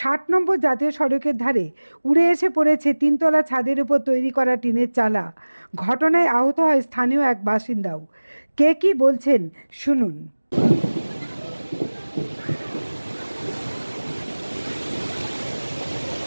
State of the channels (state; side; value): inverted; both; correlation -1.00